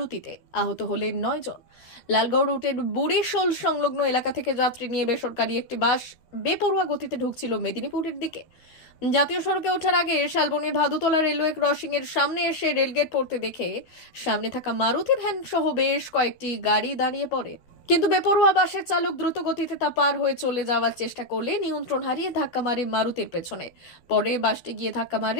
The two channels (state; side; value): late; right; 12 ms